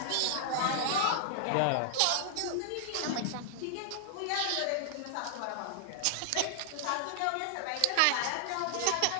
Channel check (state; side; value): different; both; correlation -0.01